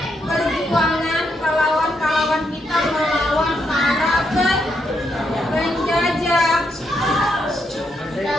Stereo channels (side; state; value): both; normal; correlation 0.79